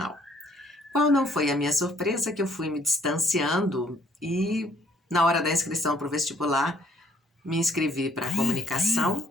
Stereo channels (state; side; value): normal; both; correlation 0.64